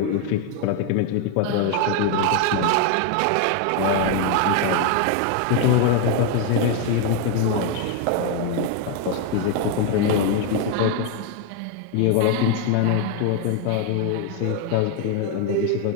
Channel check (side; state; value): both; different; correlation 0.01